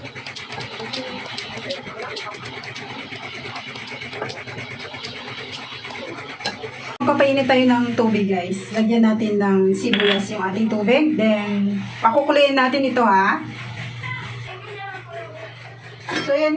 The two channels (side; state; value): both; identical; correlation 1.00